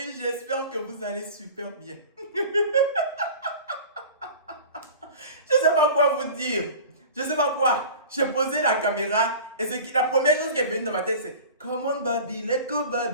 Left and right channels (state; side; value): inverted; both; correlation -0.38